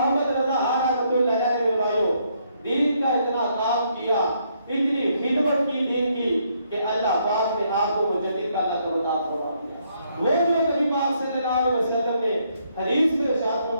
رضا رحمۃ اللہ علیہ میرے بھائیوں دین کا اتنا کام کیا, اتنی خدمت کی دین کی کہ اللہ پاک نے آپ کو مجدد کا لقب عطا فرما دیا. وہ جو نبی پاک صلی اللہ علیہ وسلم نے حدیث میں ارشاد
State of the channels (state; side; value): inverted; both; correlation -0.72